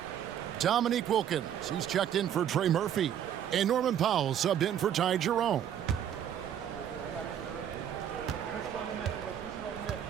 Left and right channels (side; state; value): left; quieter; 9.7 dB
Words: Domique Wilkins, he's checked in for Trey Murphy. And Norman Powell subbed in for Ty Jerome.